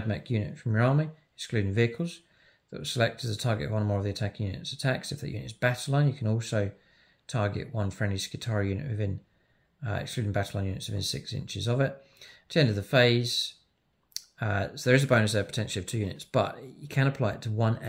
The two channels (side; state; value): both; identical; correlation 1.00